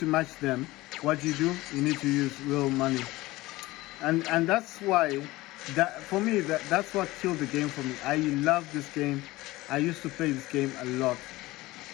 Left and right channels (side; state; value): right; quieter; 19.1 dB